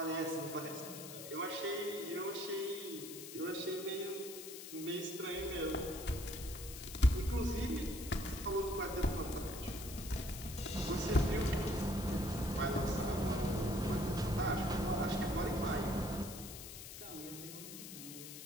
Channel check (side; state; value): left; noise; hiss, 11 dB below the sound